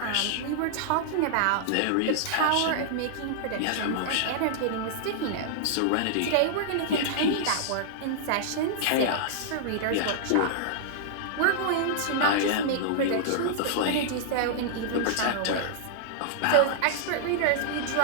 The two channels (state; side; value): different; both; correlation -0.01